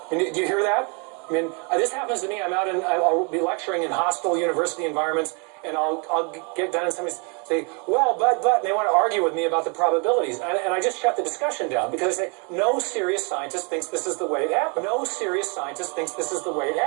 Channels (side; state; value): left; quieter; 34.8 dB